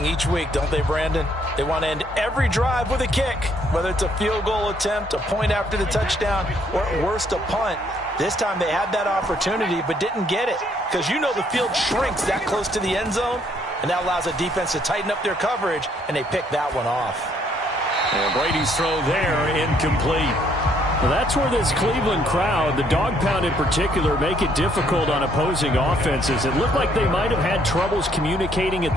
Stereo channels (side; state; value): both; normal; correlation 0.67